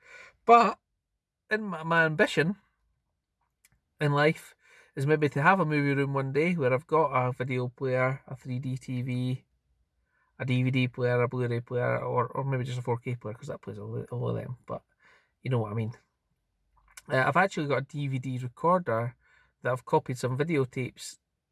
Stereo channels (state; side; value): identical; both; correlation 1.00